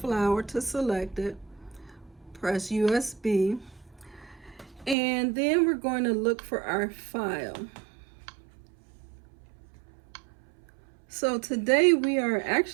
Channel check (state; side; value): drops out; left; at 5.0 s